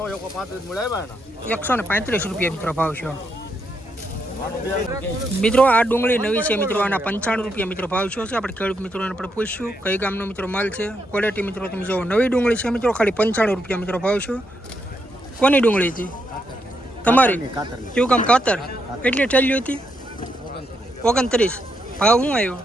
₹135 મિત્રો ભાવ છે મિત્રો આ ડુંગળી નવી છે મિત્રો આના ₹95 મિત્રો ભાવ છે આપણે ખેડૂત મિત્રોને આપણે પૂછ્યું કઈ ગામનો મિત્રો માલ છે ક્વોલિટી મિત્રો તમે જો નવી ડુંગળી છે મિત્રો ખાલી ₹95 મિત્રો ભાવ છે કોની ડુંગળી હતી તમારી કેવું કામ કાતર કેટલી ઠેલી હતી 29 ભાવ શું આવ્યો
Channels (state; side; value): normal; both; correlation 0.79